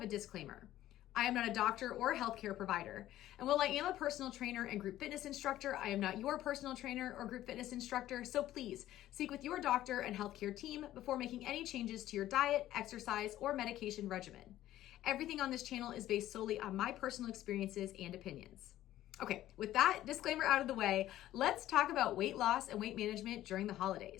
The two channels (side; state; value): right; quieter; 13.8 dB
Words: a disclaimer. I am not a doctor or a healthcare provider. And while I am a personal trainer and group fitness instructor, I am not your personal trainer or group fitness instructor. So please speak with your doctor and healthcare team before making any changes to your diet, exercise, or medication regimen. Everything on this channel is based solely on my personal experiences and opinions. Okay, with that disclaimer out of the way, let's talk about weight loss and weight management during the